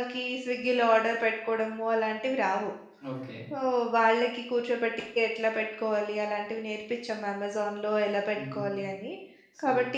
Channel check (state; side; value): identical; both; correlation 1.00